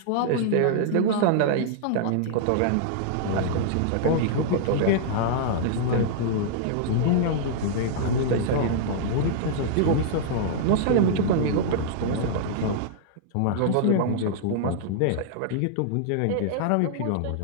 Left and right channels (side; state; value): both; different; correlation -0.01